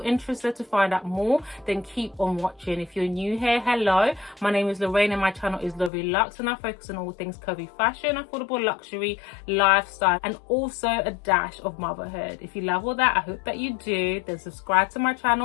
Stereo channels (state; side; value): drops out; right; at 5.9 s